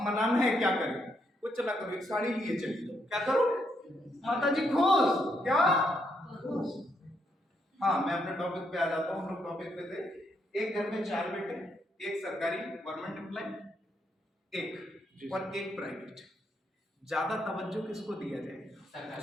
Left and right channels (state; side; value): normal; both; correlation 0.77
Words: मनाना है, क्या करें? कुछ ना करो, एक साड़ी लिए चली जाओ, क्या करो? माता जी खुश, क्या? हाँ, मैं अपने टॉपिक पे आ जाता हूँ। हम लोग टॉपिक पे थे, एक घर में 4 बेटे, एक सरकारी गवर्नमेंट एम्प्लॉय, एक और एक प्राइवेट। ज्यादा तवज्जो किसको दिया जाए?